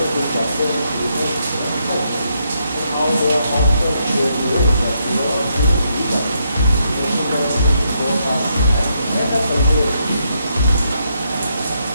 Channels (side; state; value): both; inverted; correlation -0.78